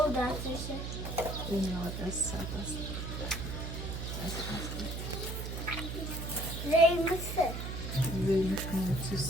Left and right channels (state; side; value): noise; right; hum, 5 dB below the sound